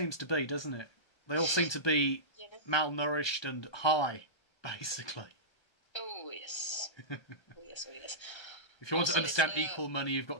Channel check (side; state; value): right; late; 1.3 ms